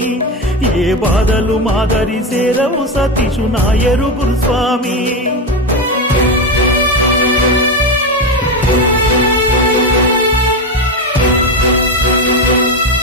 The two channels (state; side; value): normal; both; correlation 0.15